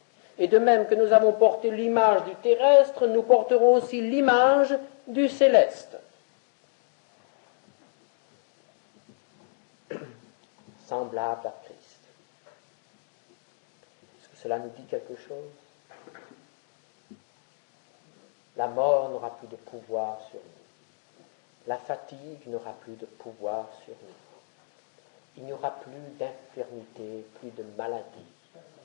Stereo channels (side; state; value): right; silent; digital silence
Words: Et de même que nous avons porté l'image du terrestre, nous porterons aussi l'image du céleste. Semblable à Christ. Est-ce que cela nous dit quelque chose? La mort n'aura plus de pouvoir sur nous. La fatigue n'aura plus de pouvoir sur nous. Il n'y aura plus d'infirmité, plus de maladie.